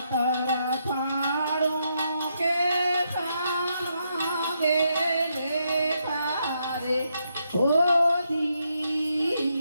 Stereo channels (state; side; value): inverted; both; correlation -0.79